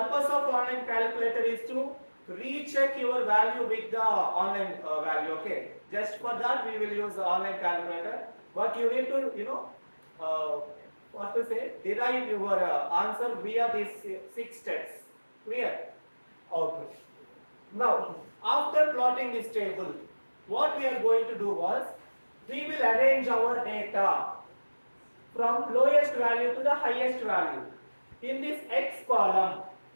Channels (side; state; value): both; inverted; correlation -1.00